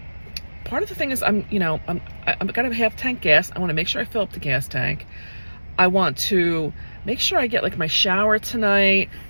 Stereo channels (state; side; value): inverted; both; correlation -1.00